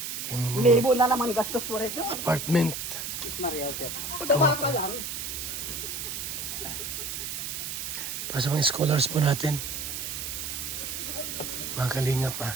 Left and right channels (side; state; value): right; noise; hiss, 5 dB below the sound